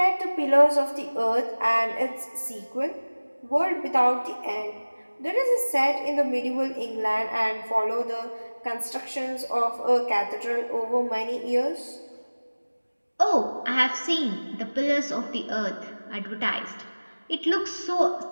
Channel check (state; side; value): inverted; both; correlation -1.00